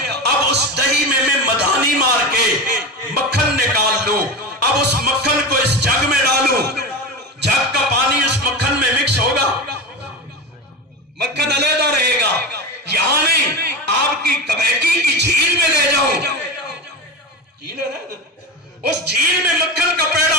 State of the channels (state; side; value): normal; both; correlation 0.24